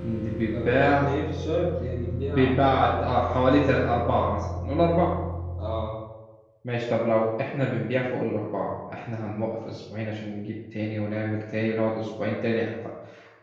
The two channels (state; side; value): identical; both; correlation 1.00